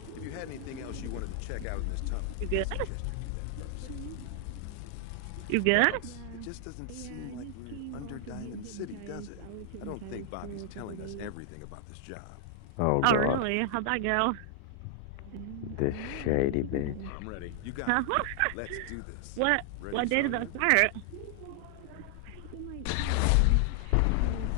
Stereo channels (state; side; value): different; both; correlation 0.00